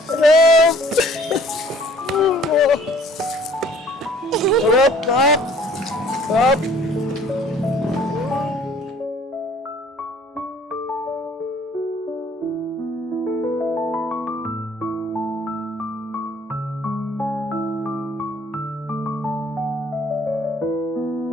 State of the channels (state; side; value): normal; both; correlation 0.55